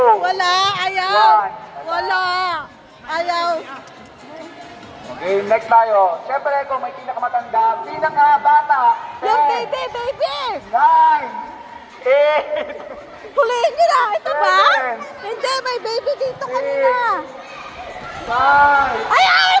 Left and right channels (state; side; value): identical; both; correlation 1.00